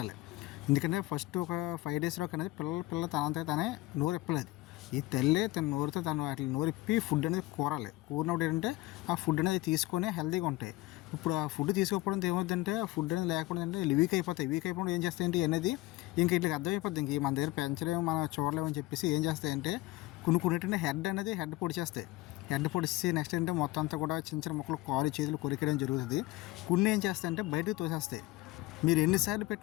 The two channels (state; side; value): quieter; right; 18.9 dB